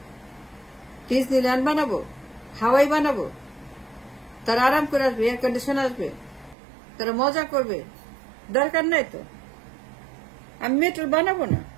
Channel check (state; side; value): drops out; left; at 6.6 s